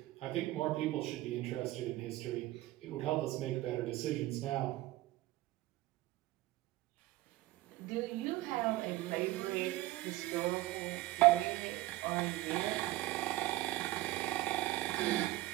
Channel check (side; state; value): left; quieter; 17.6 dB